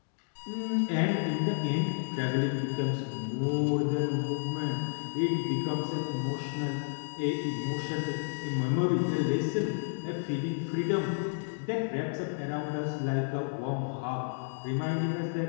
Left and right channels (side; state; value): right; silent; digital silence